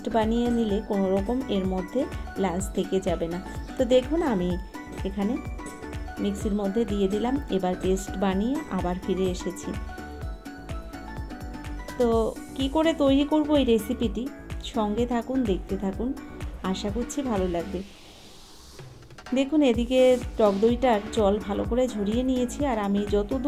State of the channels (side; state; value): both; identical; correlation 1.00